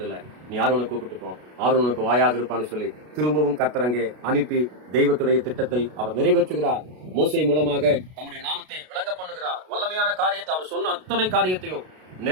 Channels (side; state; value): left; late; 33 ms